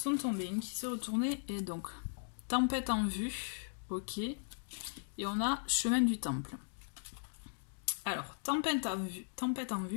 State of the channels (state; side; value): silent; right; digital silence